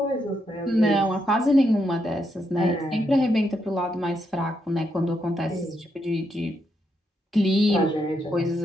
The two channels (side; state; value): both; normal; correlation 0.80